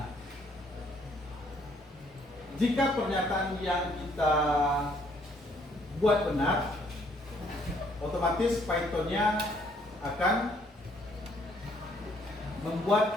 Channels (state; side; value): normal; both; correlation 0.66